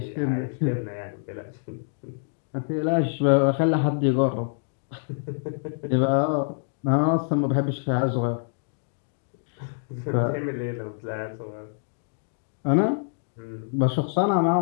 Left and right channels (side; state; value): right; silent; digital silence